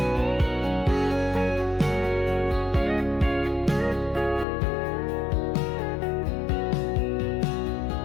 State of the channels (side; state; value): right; drops out; at 4.5 s